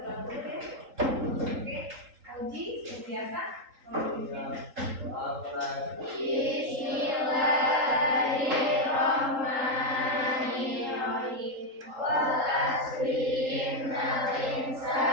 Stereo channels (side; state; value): left; late; 3.8 ms